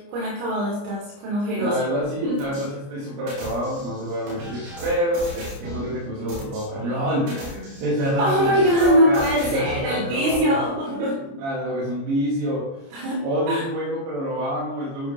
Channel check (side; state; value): left; late; 29 ms